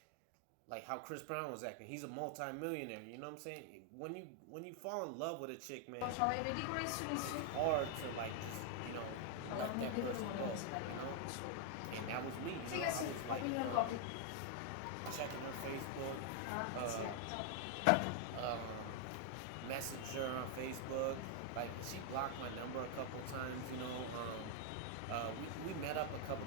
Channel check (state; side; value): different; both; correlation 0.00